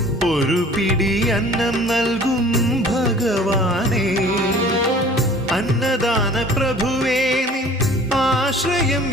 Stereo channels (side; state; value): both; normal; correlation 0.48